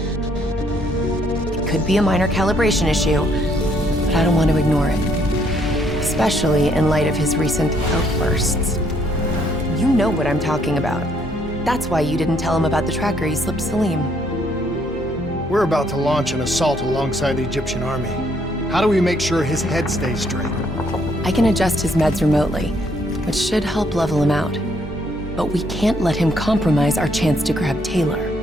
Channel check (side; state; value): both; normal; correlation 0.69